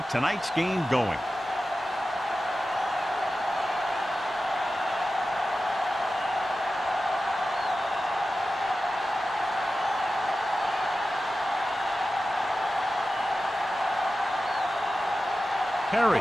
tonight's game going. Perry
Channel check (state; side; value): normal; both; correlation 0.93